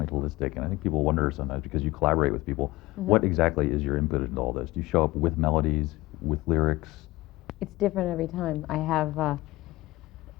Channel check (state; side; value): quieter; right; 19.5 dB